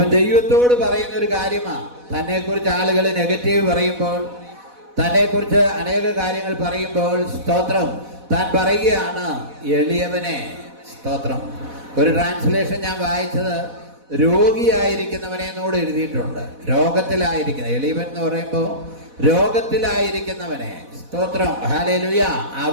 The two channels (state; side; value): late; left; 4.1 ms